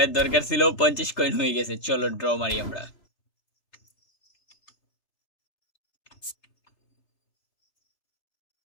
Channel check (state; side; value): late; right; 3.0 ms